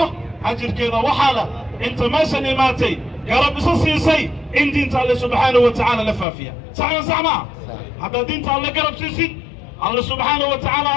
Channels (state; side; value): drops out; right; at 6.2 s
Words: ajirkeeda waxaala inta meeshan imaatay garab isa siisay in diinta Allah subhanahu wa ta'ala la faafiya saxma hadda diinta Allah garab siisid Allah subhanahu wa ta'ala